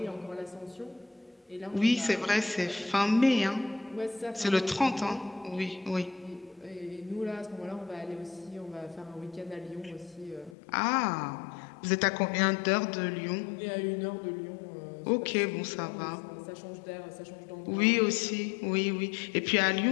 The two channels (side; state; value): right; drops out; at 10.6 s